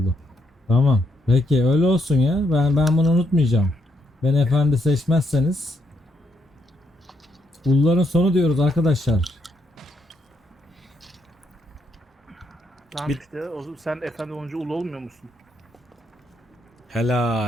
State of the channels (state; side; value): normal; both; correlation 0.77